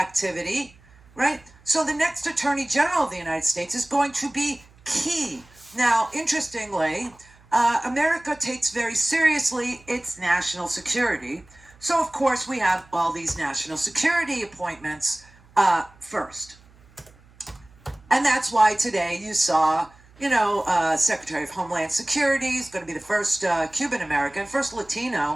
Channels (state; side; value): noise; right; hum, 27 dB below the sound